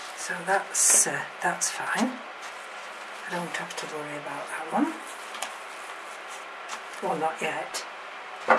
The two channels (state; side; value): identical; both; correlation 1.00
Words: So that's fine. I don't have to worry about that one. Well, not yet.